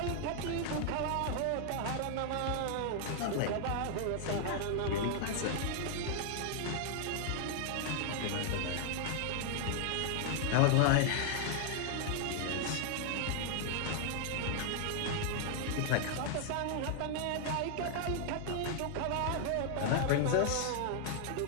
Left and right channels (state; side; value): different; both; correlation 0.00